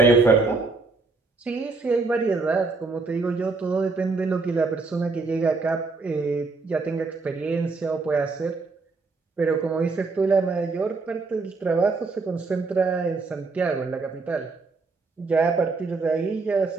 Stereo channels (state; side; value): quieter; left; 3.9 dB